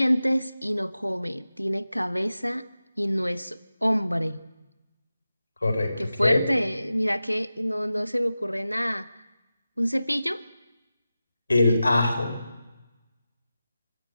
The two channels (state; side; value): inverted; both; correlation -0.94